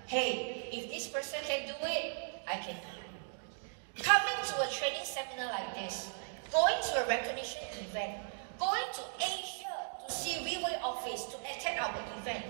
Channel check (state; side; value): silent; left; digital silence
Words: hey, if this person can do it, I can do it. Coming to a training seminar like this, going to a recognition event, going to Asia to see Riwei office, to attend our event,